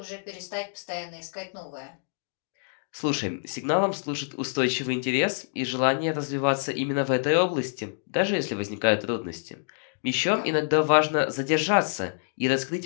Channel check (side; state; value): right; silent; digital silence